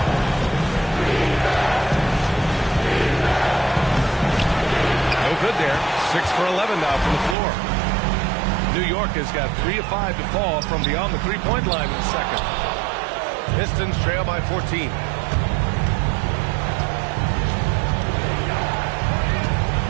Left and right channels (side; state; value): left; drops out; at 7.4 s